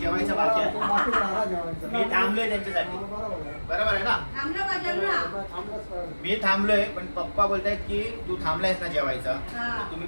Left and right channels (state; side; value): inverted; both; correlation -1.00